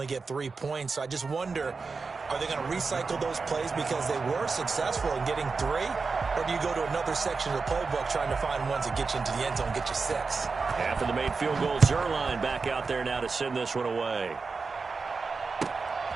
get 3 points. So I just wonder, are they going to recycle those plays because they were successful in getting 3? Or do you go to another section of the playbook trying to find ones that get you into the end zone and get you 6? After the made field goal, Zerline back out there now to send this one away.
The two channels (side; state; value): left; quieter; 4.5 dB